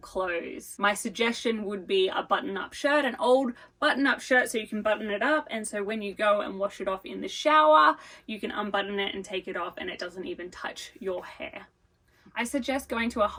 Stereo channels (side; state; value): both; identical; correlation 1.00